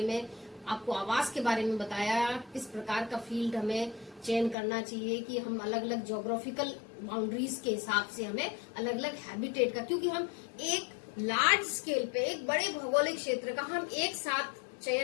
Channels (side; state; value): right; drops out; at 4.5 s